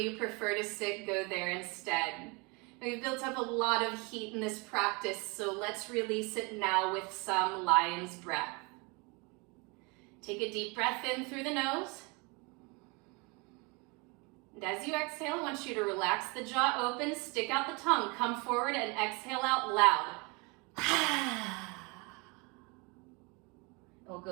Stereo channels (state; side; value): quieter; left; 29.1 dB